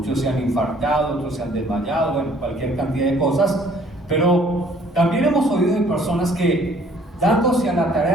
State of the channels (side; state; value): both; normal; correlation 0.58